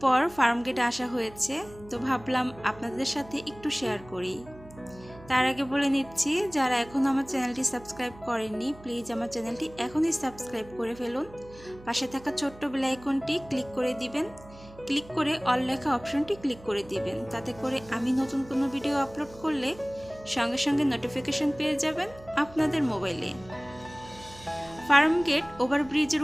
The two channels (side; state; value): right; noise; hum, 20 dB below the sound